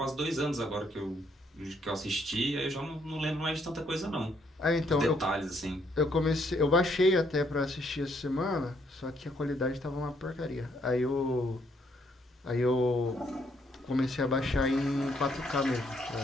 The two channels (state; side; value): normal; both; correlation 0.71